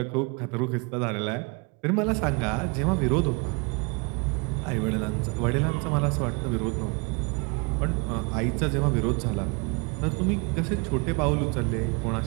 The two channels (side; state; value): left; quieter; 31.1 dB